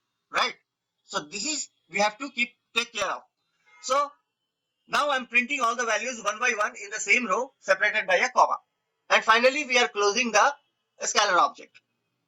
right? So this is, we have to take care of. So now I'm printing all the values one by one in the same row separated by a comma. And finally, we are closing the scalar object.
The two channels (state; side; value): identical; both; correlation 1.00